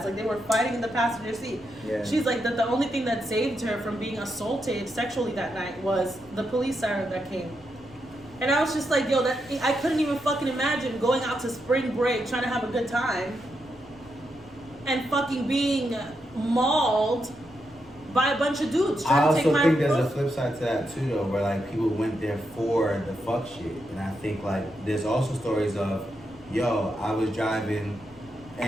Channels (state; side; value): noise; left; rumble, 27 dB below the sound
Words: like they were fighting in the passenger seat. Yeah. She's like that the only thing that saved her from being assaulted sexually that night was the police siren that came. And I was just like, yo, I couldn't even fucking imagine going out to spring break trying to have a good time and fucking being mauled by a bunch of dudes I trying to take also my think there's a flip side to that too, though, where like people went there for the fuck shit. And I think like there's also stories of, yo, I was driving